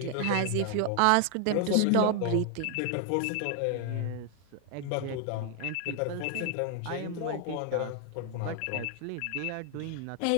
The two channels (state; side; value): different; both; correlation 0.00